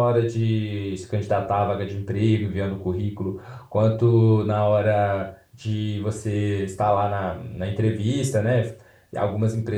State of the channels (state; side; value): identical; both; correlation 1.00